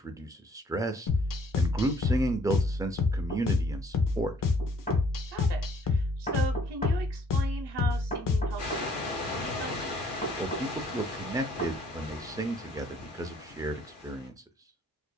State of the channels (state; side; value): normal; both; correlation 0.62